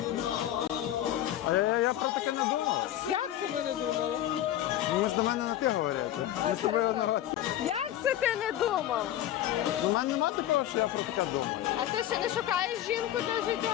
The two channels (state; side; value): quieter; right; 12.5 dB